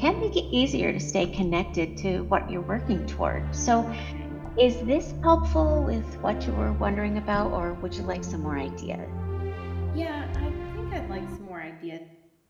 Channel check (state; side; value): identical; both; correlation 1.00